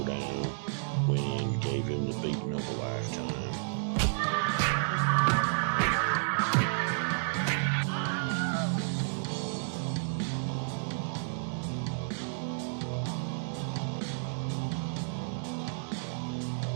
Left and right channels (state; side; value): silent; left; digital silence